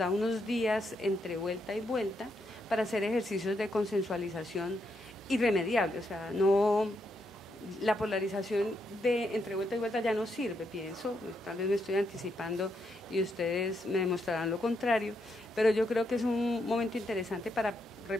unos días entre vuelta y vuelta para hacer ejercicios de consensualización irremediable. O sea, la polarización de entre vuelta y vuelta ya no sirve, pienso, tal vez me estoy anticipando y ustedes me demostrarán lo contrario, pero yo creo que es un momento interesante para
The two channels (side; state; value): both; normal; correlation 0.80